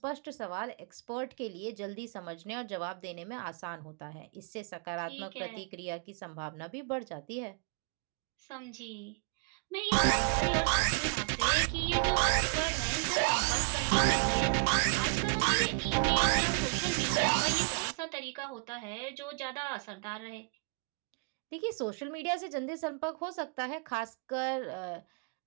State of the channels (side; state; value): left; quieter; 34.2 dB